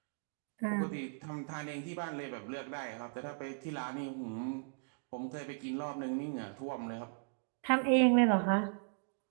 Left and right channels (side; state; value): left; quieter; 39.3 dB